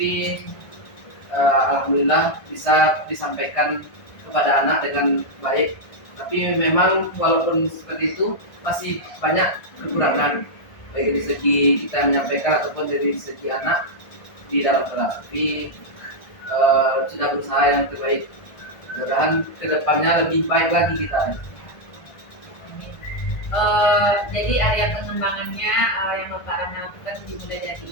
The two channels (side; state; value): right; late; 1.5 ms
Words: alhamdulillah bisa disampaikan kepada anak dengan baik. Tapi memang walaupun seperti itu masih banyak kekurangan baik dari segi kita menyampaikan ataupun dari segi anak di dalam kelas. Tapi sudah berusaha yang terbaik. Mudah-mudahan kedepannya lebih baik lagi kita. Jadi area pengembangannya yang Bapak Rama lakukan dimulai dari